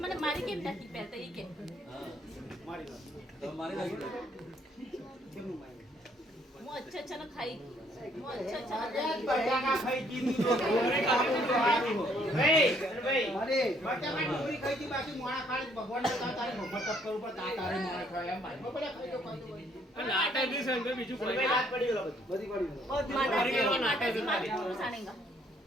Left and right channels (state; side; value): normal; both; correlation 0.66